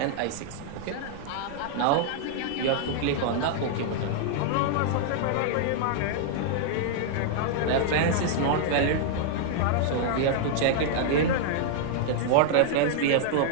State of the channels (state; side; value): different; both; correlation -0.01